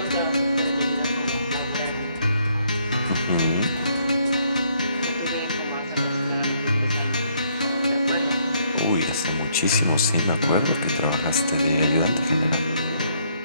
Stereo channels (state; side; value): inverted; both; correlation -0.69